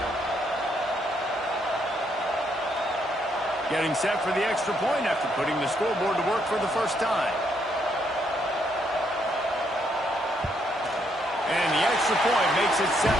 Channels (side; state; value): both; normal; correlation 0.74